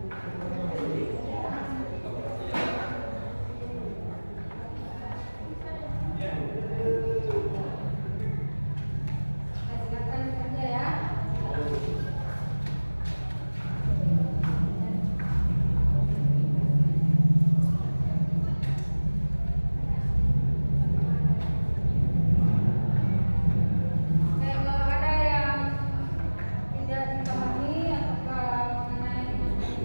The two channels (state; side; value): inverted; both; correlation -1.00